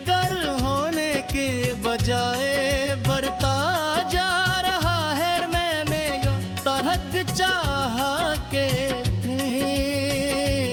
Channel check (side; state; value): both; identical; correlation 1.00